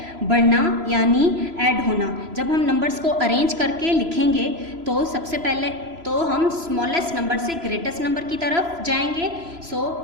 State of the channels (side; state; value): left; late; 3.0 ms